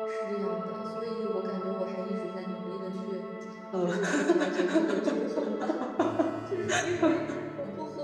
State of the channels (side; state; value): both; identical; correlation 1.00